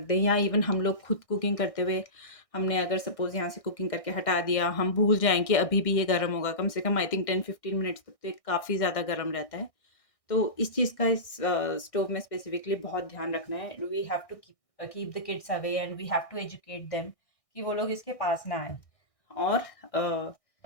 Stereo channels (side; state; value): right; late; 1.6 ms